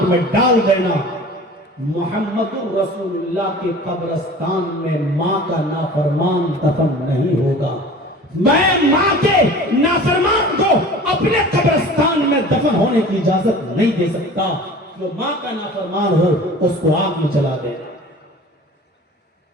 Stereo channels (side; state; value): both; normal; correlation 0.41